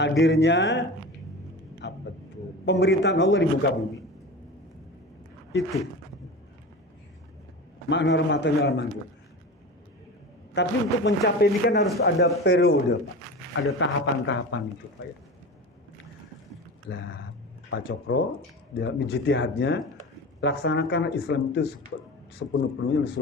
pemerintahan Allah di muka bumi. Itu makna rahmatan lil alamin. Tapi untuk mencapai ini kan harus ada periode, Pak. Ada tahapan-tahapan itu, Pak ya. Lah, Pak Cokro dalam ijtihadnya laksanakan Islam itu sepenuh-penuhnya dan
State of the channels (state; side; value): normal; both; correlation 0.31